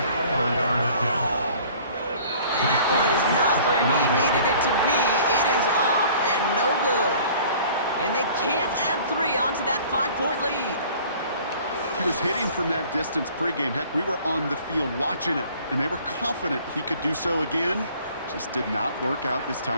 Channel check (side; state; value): both; inverted; correlation -0.51